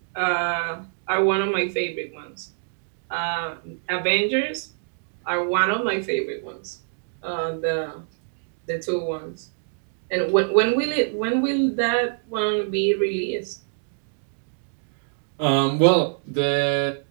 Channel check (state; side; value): silent; left; digital silence